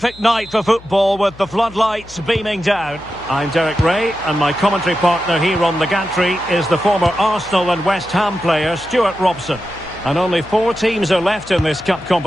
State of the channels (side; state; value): left; noise; hum, 21 dB below the sound